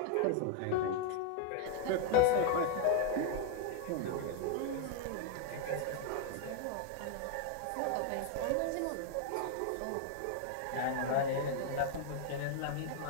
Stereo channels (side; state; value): both; different; correlation 0.00